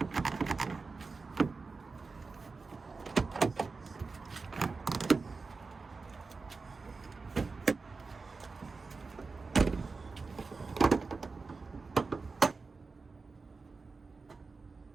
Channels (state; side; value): quieter; left; 4.3 dB